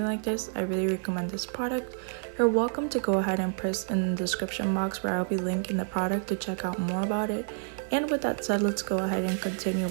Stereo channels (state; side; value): silent; left; digital silence